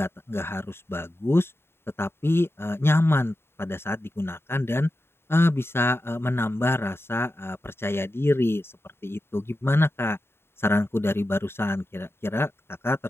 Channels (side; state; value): right; late; 0.11 ms